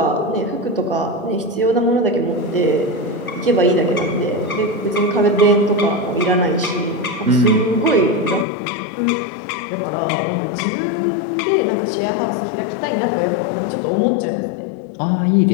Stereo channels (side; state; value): right; drops out; at 8.5 s